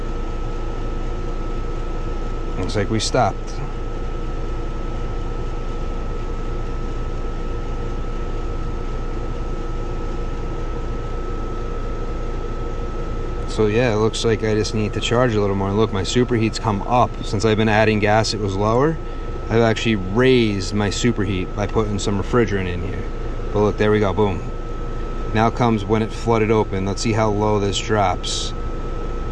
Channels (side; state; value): both; identical; correlation 1.00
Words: Looks like we stopped. So yeah, it looks like I just need to charge a little more. Look, my superheat's come up. Since I've been adding gas, it was lower. I've actually raised my superheat by putting some refrigerant in here. But look, there we go, boom. Now comes when it flooded open. Let's see how low this drops.